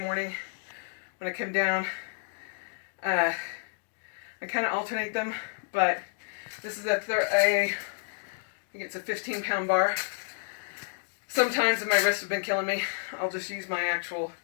when I come down. I kind of alternate them, but this is I think it's a 15-pound bar. Sometimes if my wrists have been killing me, I'll just use my actual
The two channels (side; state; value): right; silent; digital silence